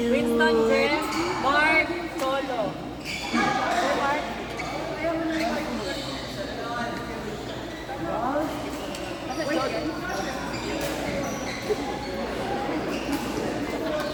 Winston, Jem, Mark, Solo. Mark.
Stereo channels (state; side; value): identical; both; correlation 1.00